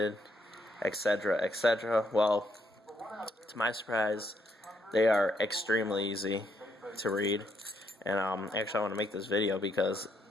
etc., etc. Well, to my surprise, they are extremely easy to read. And actually, I want to make this video because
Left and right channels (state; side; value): normal; both; correlation 0.74